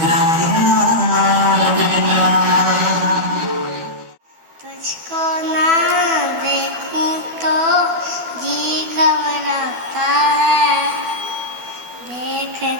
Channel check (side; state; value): left; late; 12 ms